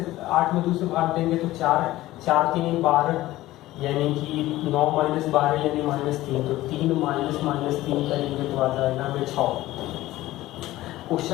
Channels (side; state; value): right; quieter; 16.4 dB